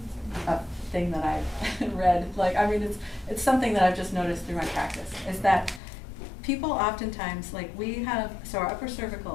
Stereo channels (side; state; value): right; drops out; at 5.8 s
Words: thing that I've read. Like, I mean, it's something that I've just noticed through my practice, is that people oftentimes, like we have, so our upper